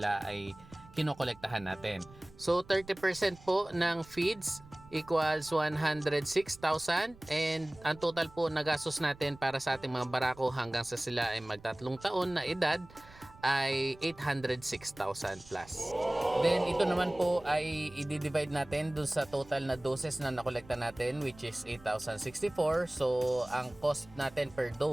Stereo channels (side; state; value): right; noise; rumble, 22 dB below the sound